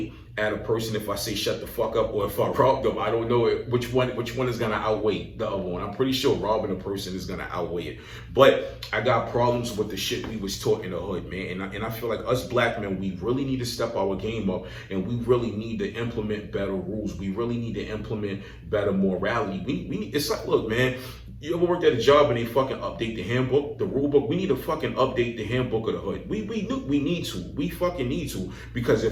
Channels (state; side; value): identical; both; correlation 1.00